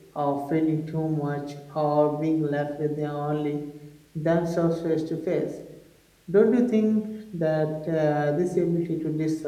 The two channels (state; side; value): identical; both; correlation 1.00